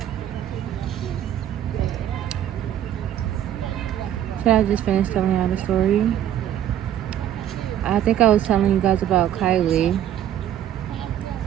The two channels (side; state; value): left; quieter; 11.1 dB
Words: Should I just finish telling y'all the story? I think I was telling you guys about Kylie.